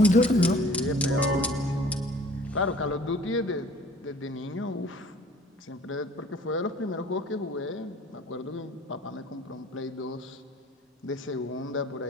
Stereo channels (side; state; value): both; normal; correlation 0.51